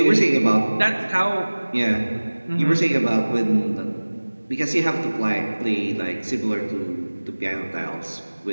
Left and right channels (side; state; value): both; inverted; correlation -1.00